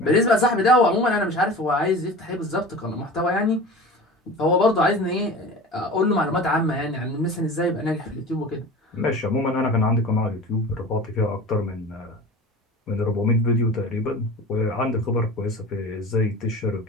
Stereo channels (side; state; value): both; normal; correlation 0.36